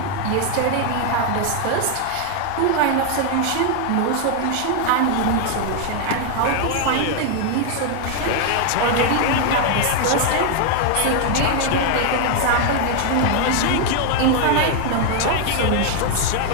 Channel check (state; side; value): different; both; correlation 0.00